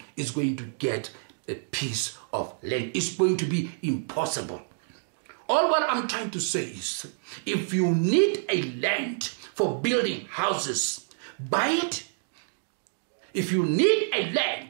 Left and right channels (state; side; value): silent; left; digital silence